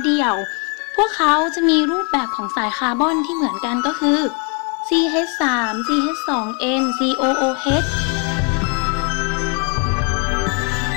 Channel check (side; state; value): right; quieter; 36.2 dB